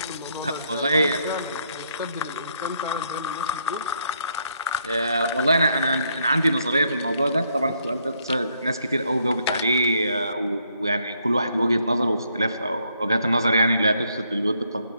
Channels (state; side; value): inverted; both; correlation -0.73